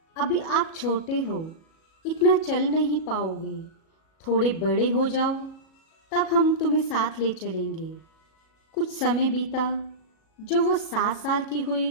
अभी आप छोटे हो, इतना चल नहीं पाओगे। थोड़े बड़े हो जाओ, तब हम तुम्हें साथ ले चलेंगे। कुछ समय बीता। जो वो 7 साल की हुई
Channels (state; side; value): late; right; 37 ms